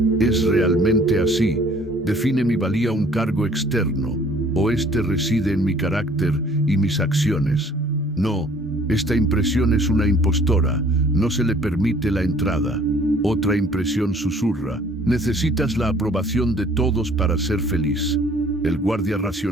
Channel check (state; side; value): normal; both; correlation 0.56